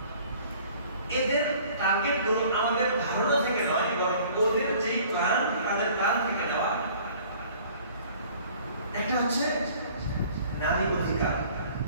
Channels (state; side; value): inverted; both; correlation -0.52